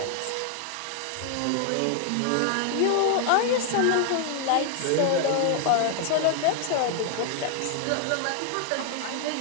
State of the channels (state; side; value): different; both; correlation 0.00